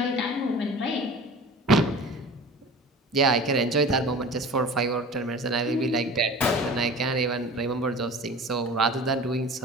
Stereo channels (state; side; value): normal; both; correlation 0.39